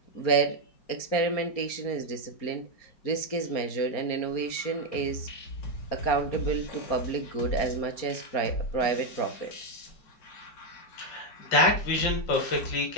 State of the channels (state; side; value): late; right; 4.3 ms